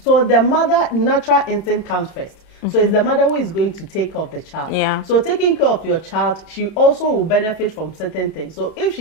So the mother natural instinct comes first. So it's the mother who is going to take care of the child. Yeah. So taking care of your child, she also will benefit from certain things. So if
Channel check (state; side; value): late; right; 31 ms